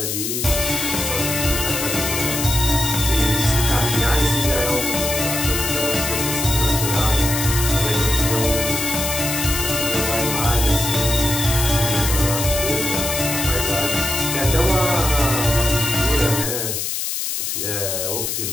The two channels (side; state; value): left; noise; hiss, 2 dB below the sound